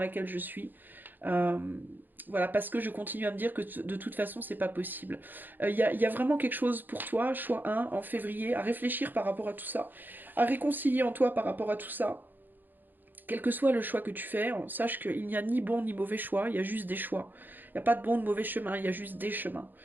je suis. Euh, voilà, parce que je continue à me dire que de toute façon, c'est pas possible. Il y a vraiment quelque chose pour toi, choix 1, en février, à réfléchir par rapport à tout ça, à réconcilier en toi par rapport à tout ça. Quel que soit le choix que tu fais, sache qu'il n'y a ni bon ni mauvais choix, il y a juste des choix. Il n'y a pas de bon ou de mauvais chemin, il y a juste des chemins.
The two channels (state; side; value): late; left; 0.090 ms